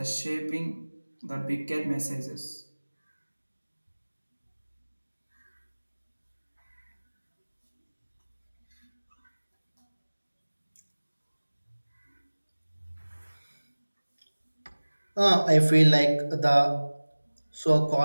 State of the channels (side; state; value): both; inverted; correlation -1.00